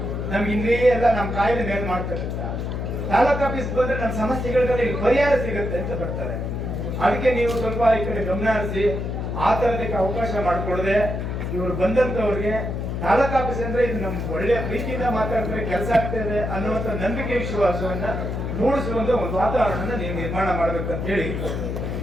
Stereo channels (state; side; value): noise; left; hum, 3 dB below the sound